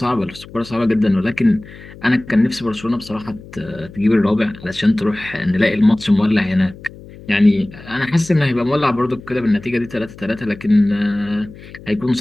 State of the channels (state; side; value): noise; left; hum, 18 dB below the sound